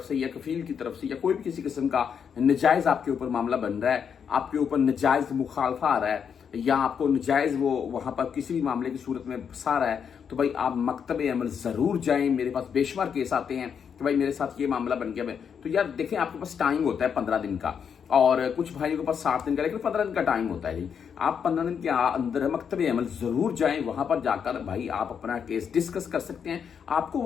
से या कफील की तरफ से या कोई भी किसी किस्म का नजायज़ आपके ऊपर मामला बन रहा है, आपके ऊपर नजायज़ मुखालफा आ रहा है या आपको नजायज़ वो वहाँ पर किसी भी मामले की सूरत में फंसा रहा है, तो भाई आप मकतब अमल ज़रूर जाएं। मेरे पास बेशुमार केस आते हैं कि भाई मेरे साथ ये मामला बन गया। तो यार देखें, आपके पास टाइम होता है 15 दिन का, और कुछ भाइयों के पास 60 दिन का, लेकिन 15 दिन का टाइम होता है जी। आप 15 दिन के अंदर मकतब अमल ज़रूर जाएं। वहाँ पर जाकर भाई आप अपना केस डिस्कस कर सकते हैं। आपको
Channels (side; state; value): right; quieter; 7.2 dB